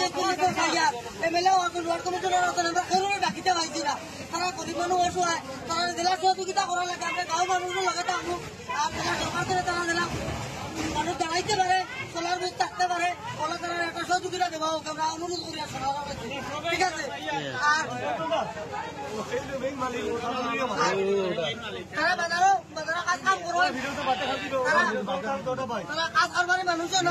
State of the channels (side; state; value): both; identical; correlation 1.00